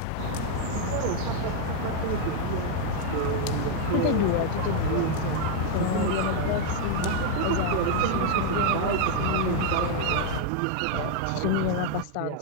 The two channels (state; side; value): different; both; correlation 0.00